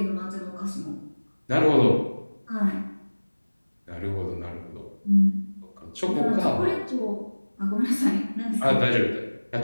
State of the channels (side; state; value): both; inverted; correlation -1.00